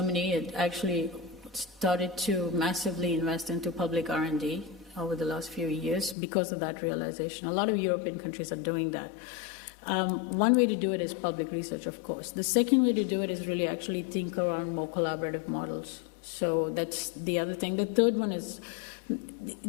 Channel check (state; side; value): drops out; right; at 6.2 s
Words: it actually started to massively invest into public R&D over the last few years because of that realization. A lot of European countries are doing that. One way to do it is public research, of course. The second way to do it is really actually think around more collaborative models. So that's the other thing. The third one is